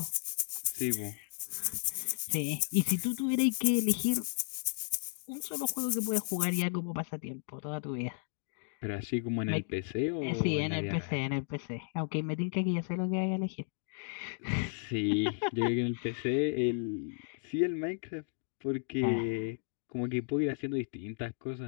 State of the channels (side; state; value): right; silent; digital silence